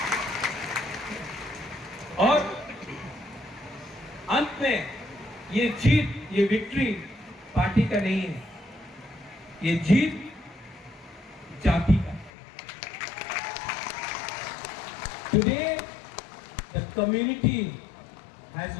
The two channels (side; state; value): right; drops out; at 12.3 s